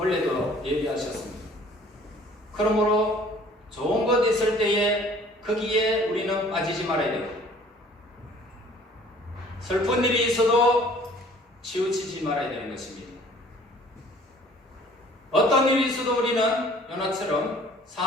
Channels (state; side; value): normal; both; correlation 0.53